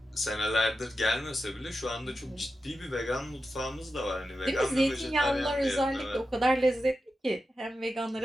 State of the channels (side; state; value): both; normal; correlation 0.91